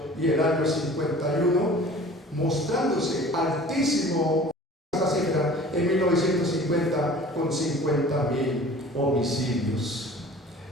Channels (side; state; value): both; normal; correlation 0.45